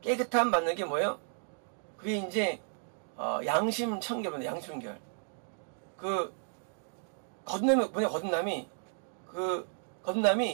깨끗함 받는 게 뭐예요? 그게 이제 양심 청결입니다. 양심 청결. 그 거듭남이 뭐냐? 거듭남이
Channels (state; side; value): silent; left; 56 dB below the other